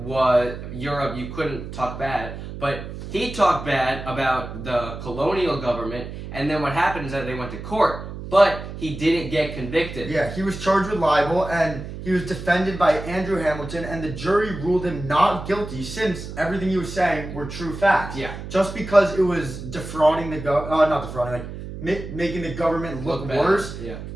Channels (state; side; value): noise; right; hum, 10 dB below the sound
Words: couldn't talk bad, but he talked bad about the colonial government, and then what happened is that they went to court. But he didn't get convicted. Yeah, he was charged with libel, and he was defended by Andrew Hamilton, and the jury ruled him not guilty since everything he was saying were true facts. Yeah. Just because it was defrauding making the government look worse. Yeah.